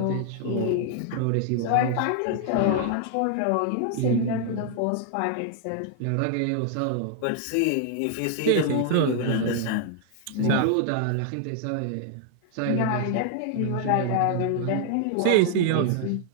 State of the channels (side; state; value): both; different; correlation 0.00